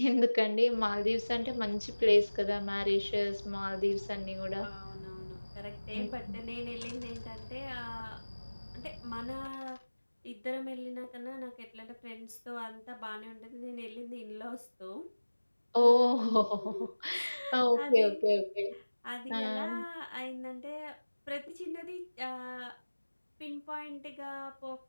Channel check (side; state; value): both; inverted; correlation -1.00